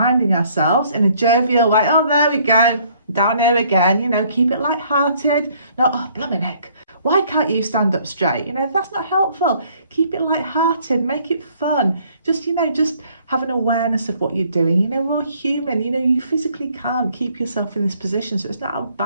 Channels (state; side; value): inverted; both; correlation -0.62